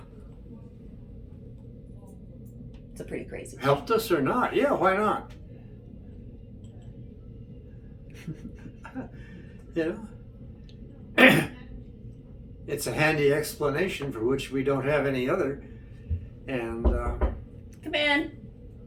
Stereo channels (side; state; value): both; identical; correlation 1.00